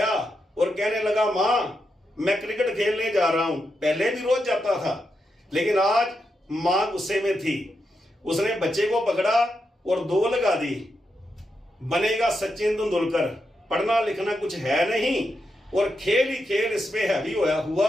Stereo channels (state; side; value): normal; both; correlation 0.85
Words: और कहने लगा, माँ मैं क्रिकेट खेलने जा रहा हूं। पहले भी रोज जाता था, लेकिन आज माँ गुस्से में थी। उसने बच्चे को पकड़ा और 2 लगा दी, बनेगा सचिन तेंदुलकर, पढ़ना लिखना कुछ है नहीं और खेल ही खेल इस पे हैवी